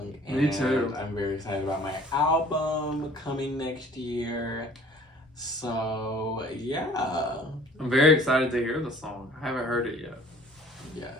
And me too. I'm very excited about my album coming next year. So yeah, I'm very excited to hear the song. I haven't heard it yet. Yeah,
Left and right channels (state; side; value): normal; both; correlation 0.52